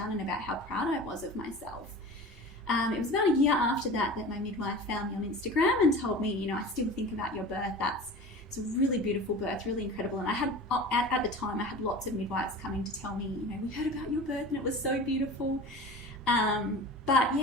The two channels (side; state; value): both; normal; correlation 0.36